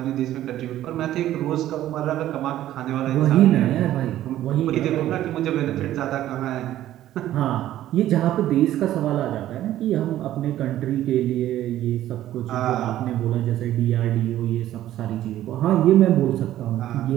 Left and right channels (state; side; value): quieter; left; 13.2 dB